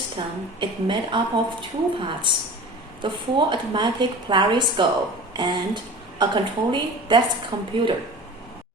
is made up of two parts: the full automatic Polariscope and a controlling desk computer.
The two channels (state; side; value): normal; both; correlation 0.38